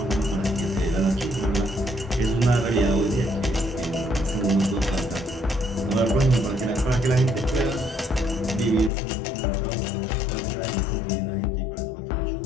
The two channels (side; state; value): right; drops out; at 8.9 s